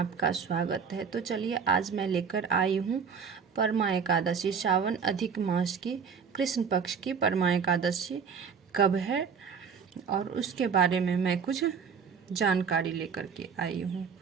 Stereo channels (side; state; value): left; quieter; 6.2 dB